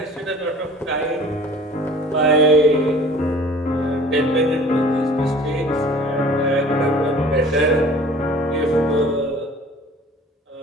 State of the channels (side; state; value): both; normal; correlation 0.48